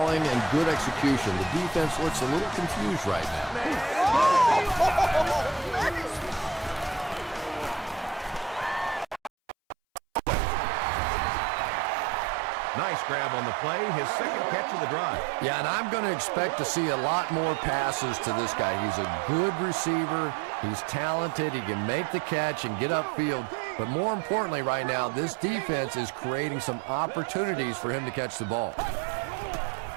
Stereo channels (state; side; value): drops out; left; at 9.3 s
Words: and good execution. The defense looks a little confused right now. Nice grab on the play, his second catch of the drive. Yeah, and I'm going to expect to see a lot more passes to this guy. He's a good receiver. He's talented. He can make the catch and get upfield. But more importantly right now, this defense is creating some opportunities for him to catch the ball.